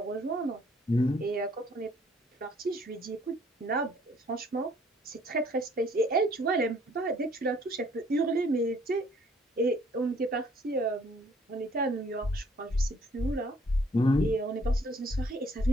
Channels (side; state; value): both; normal; correlation 0.61